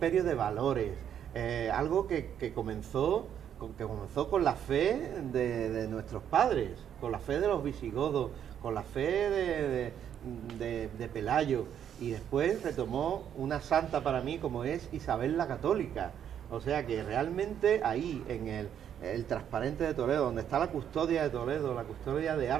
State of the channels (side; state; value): left; quieter; 9.3 dB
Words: de valores, algo que comenzó con la fe de nuestros padres, con la fe de los visigodos, con la fe de Pelayo, y después retomó una santa para mí como es Isabel la Católica. O sea que realmente ahí, en el transparente de Toledo, donde está la custodia de Toledo, la custodia de